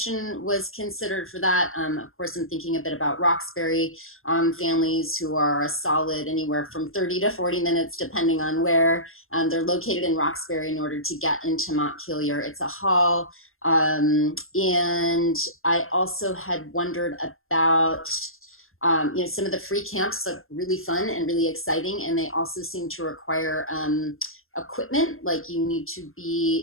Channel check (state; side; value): late; right; 0.61 ms